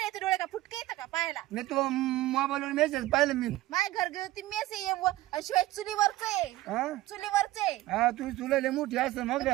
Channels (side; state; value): left; quieter; 16.8 dB